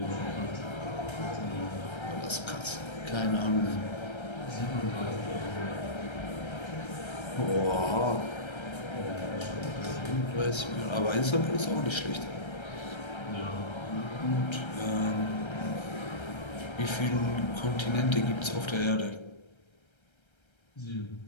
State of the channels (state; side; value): late; right; 1.3 ms